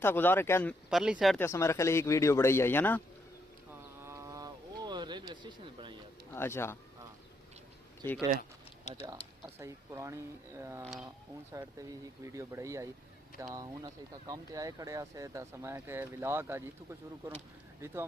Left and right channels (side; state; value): both; normal; correlation 0.76